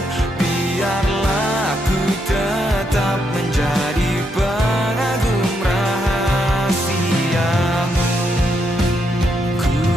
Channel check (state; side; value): normal; both; correlation 0.79